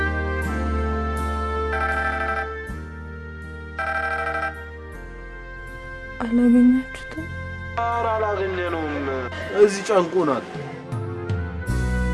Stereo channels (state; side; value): identical; both; correlation 1.00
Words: አላገኛችሁትም? ኧረ አላገኘነውም። እዚህ ጨንቆናል።